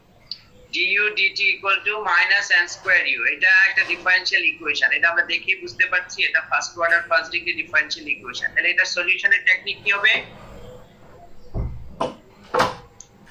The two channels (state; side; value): identical; both; correlation 1.00